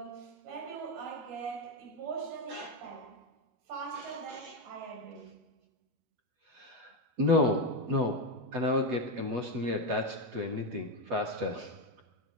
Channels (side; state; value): left; late; 12 ms